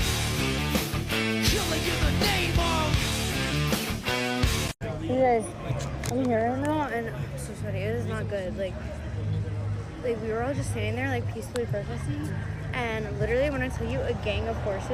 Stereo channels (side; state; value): both; identical; correlation 1.00